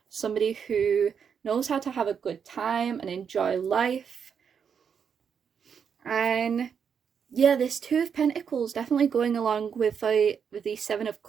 Somebody who knows how to have a good time and enjoy life. And yeah, this 2 of Pentacles definitely going along with the 7 of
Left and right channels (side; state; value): left; quieter; 7.1 dB